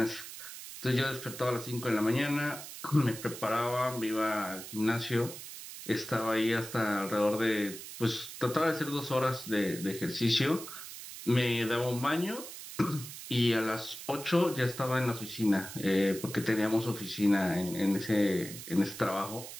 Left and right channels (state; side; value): noise; right; hiss, 11 dB below the sound